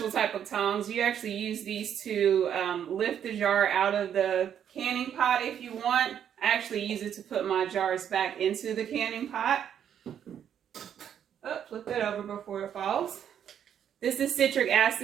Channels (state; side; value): quieter; left; 9.1 dB